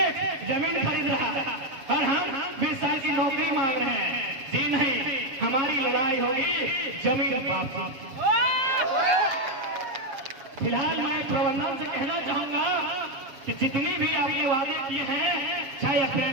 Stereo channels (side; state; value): left; late; 7.4 ms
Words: जमीन खरीद रहा है और हम 20 साल की नौकरी मांग रहे हैं। जी नहीं, हमारी लड़ाई होगी जमीन वापसी। फिलहाल मैं प्रबंधन से कहना चाहूंगा कि जितनी भी आपने वादे किए हैं, चाहे